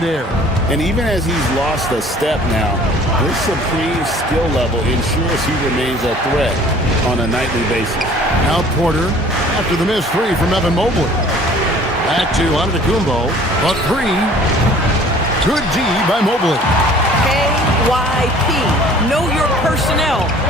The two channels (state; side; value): normal; both; correlation 0.51